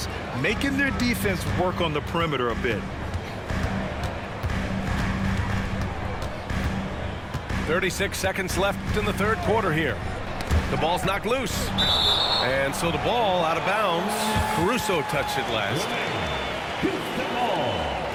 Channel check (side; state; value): both; identical; correlation 1.00